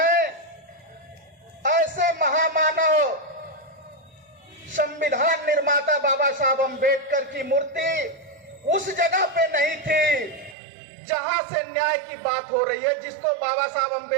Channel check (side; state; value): left; drops out; at 10.6 s